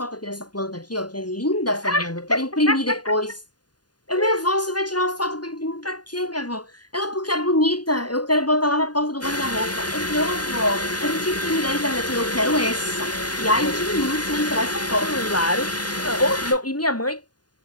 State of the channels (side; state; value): right; late; 0.70 ms